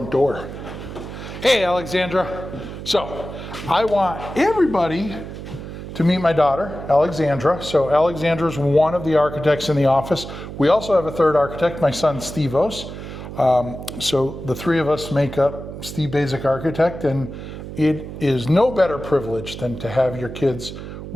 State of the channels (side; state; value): right; noise; hum, 10 dB below the sound